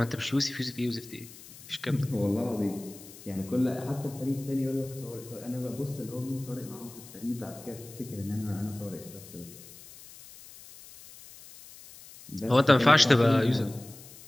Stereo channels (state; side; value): noise; left; hiss, 18 dB below the sound